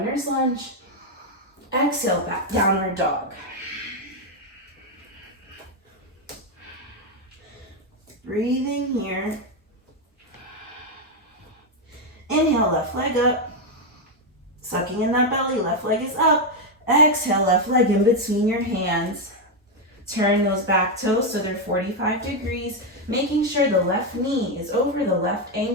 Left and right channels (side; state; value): both; normal; correlation 0.04